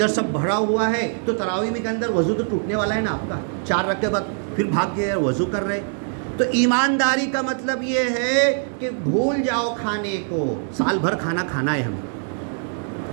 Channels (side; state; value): left; silent; 64 dB below the other